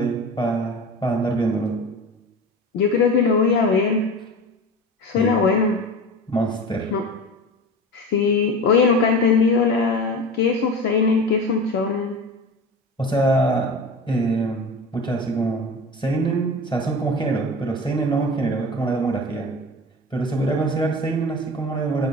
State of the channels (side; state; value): both; normal; correlation 0.32